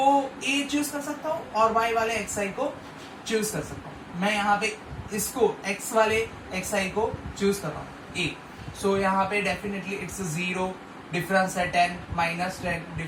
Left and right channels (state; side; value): identical; both; correlation 1.00